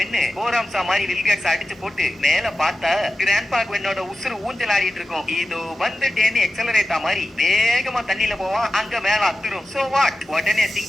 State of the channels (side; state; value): both; normal; correlation 0.94